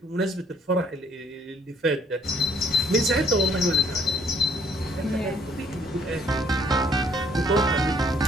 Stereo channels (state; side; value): normal; both; correlation 0.63